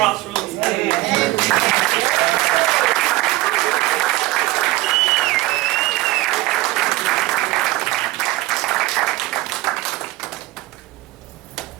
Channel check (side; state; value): left; quieter; 18.7 dB